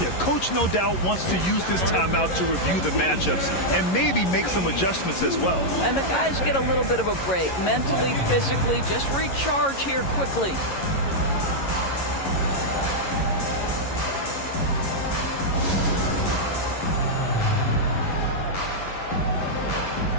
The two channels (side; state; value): right; late; 11 ms